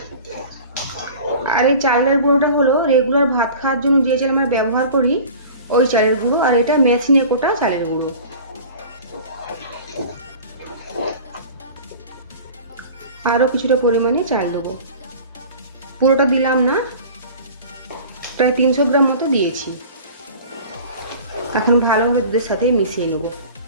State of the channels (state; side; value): inverted; both; correlation -0.41